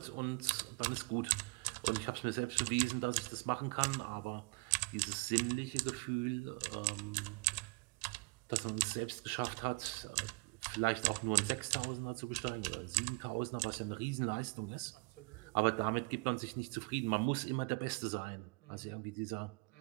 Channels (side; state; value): left; quieter; 29.1 dB